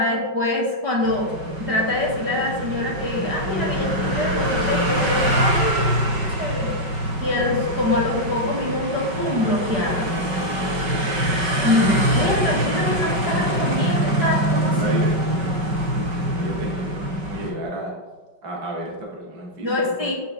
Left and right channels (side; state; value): left; late; 5.2 ms